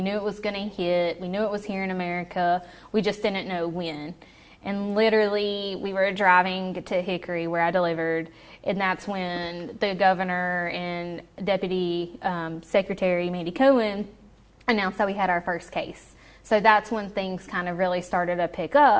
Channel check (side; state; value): both; identical; correlation 1.00